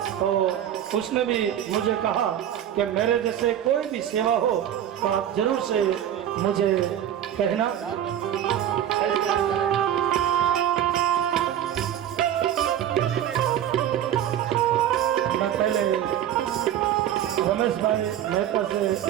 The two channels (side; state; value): left; quieter; 10.7 dB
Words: तो उसने भी मुझे कहा कि मेरे जैसे कोई भी सेवा हो तो आप जरूर से मुझे कहना। मैं पहले रमेश भाई मेहता